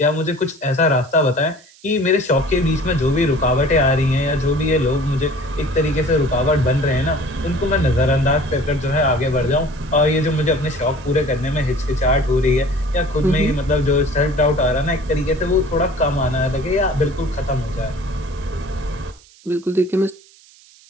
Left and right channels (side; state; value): right; noise; hiss, 26 dB below the sound